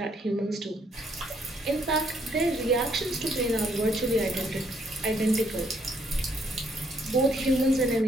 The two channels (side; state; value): both; normal; correlation 0.70